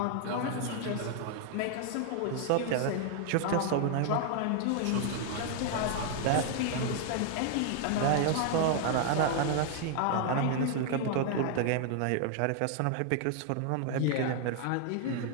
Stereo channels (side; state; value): both; different; correlation 0.00